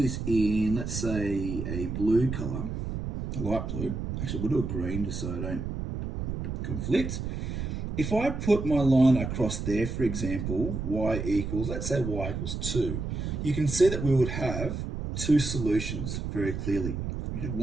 this in, let's say, a blue color, a light blue. Actually, we'll do a green just so I don't conflict. If I put my line across there, for example, y equals, let's say y equals 2, you can see that we would have two solutions very clearly. We have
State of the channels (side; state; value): right; noise; rumble, 4 dB below the sound